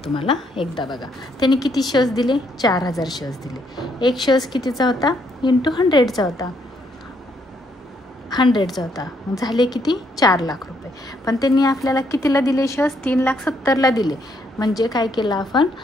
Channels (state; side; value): normal; both; correlation 0.72